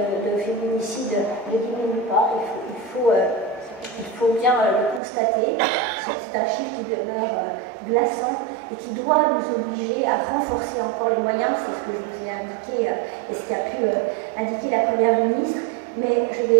féminicide ne diminue pas, il faut bien le constater. C'est un chiffre qui demeure glaçant et qui doit nous obliger à renforcer encore les moyens. C'est ce que je vous ai indiqué et ce qu'a pu indiquer la Première ministre. Mais je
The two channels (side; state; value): left; drops out; at 5.0 s